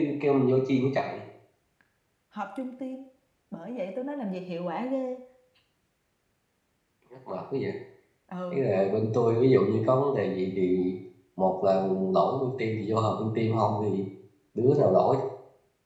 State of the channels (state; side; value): identical; both; correlation 1.00